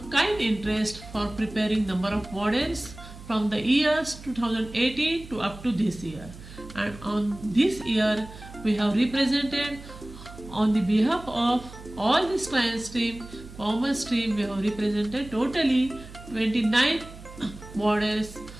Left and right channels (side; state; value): right; noise; hum, 16 dB below the sound